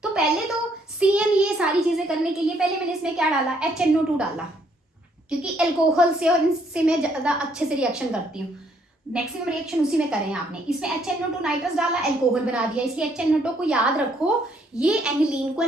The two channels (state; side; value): normal; both; correlation 0.69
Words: तो पहले तो CN, ये सारी चीजें करने के लिए पहले मैंने इसमें क्या डाला, HNO2 डाला, क्योंकि अल्कोहल से और इनसे मैं ज्यादा अच्छे से रिएक्शन करती हूँ, मैक्सिमम रिएक्शन उसी में करें आपने। इसमें HNO2 नाइट्रस डाला, अल्कोहल बना दिया, इसलिए HNO2 को याद रखो, ये एनिलीन को